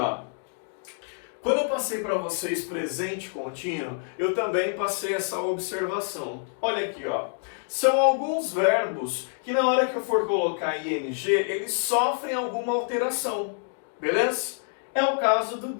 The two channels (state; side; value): silent; right; 60 dB below the other